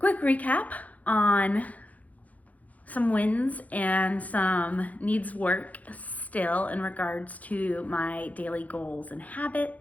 recap on some wins and some needs work still in regards to my daily goals and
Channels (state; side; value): late; right; 0.074 ms